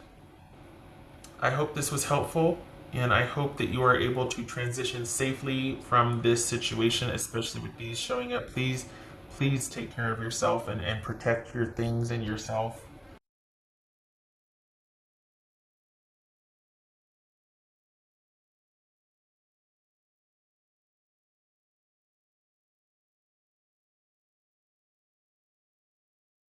I hope this was helpful, and I hope that you are able to transition safely from this situation, especially with these showing up. Please take care of yourself and protect your things and yourself.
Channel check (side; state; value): both; identical; correlation 1.00